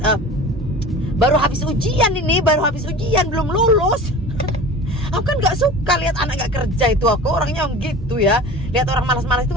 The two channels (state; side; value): normal; both; correlation 0.37